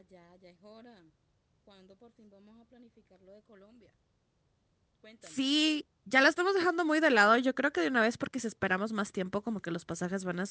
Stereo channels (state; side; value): identical; both; correlation 1.00